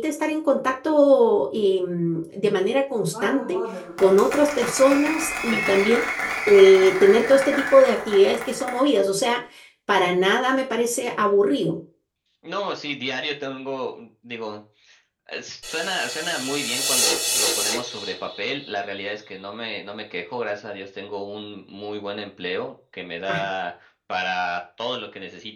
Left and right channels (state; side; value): identical; both; correlation 1.00